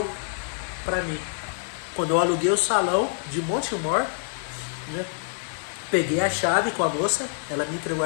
para mim. Quando eu aluguei o salão de Montemor, né, peguei a chave com a moça, ela me entregou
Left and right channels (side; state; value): right; silent; digital silence